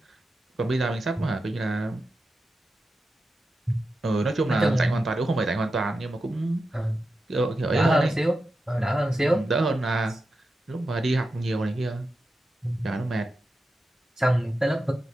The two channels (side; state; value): both; normal; correlation 0.90